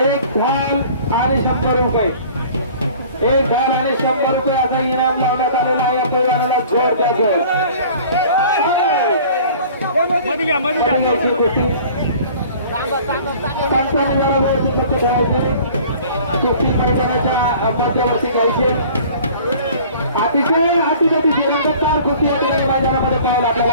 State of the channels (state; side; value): inverted; both; correlation -0.48